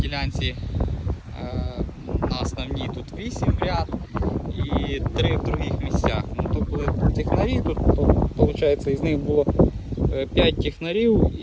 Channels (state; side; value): identical; both; correlation 1.00